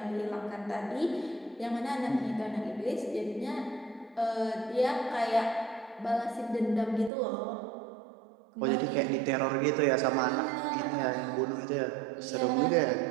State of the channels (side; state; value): left; drops out; at 7.1 s